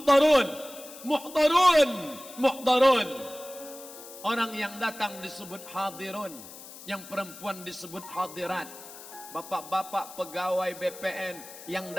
muhdarun, muhdarun. Orang yang datang disebut hadirun, yang perempuan disebut hadirat. Bapak-bapak pegawai BPN yang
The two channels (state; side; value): noise; left; hiss, 16 dB below the sound